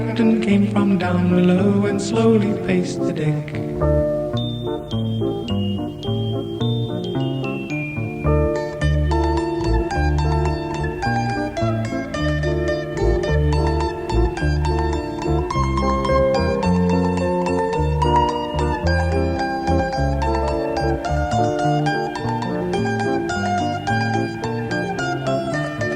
came from down below and slowly paced the deck.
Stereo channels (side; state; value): both; identical; correlation 1.00